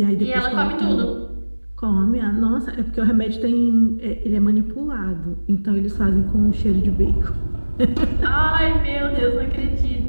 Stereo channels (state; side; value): inverted; both; correlation -1.00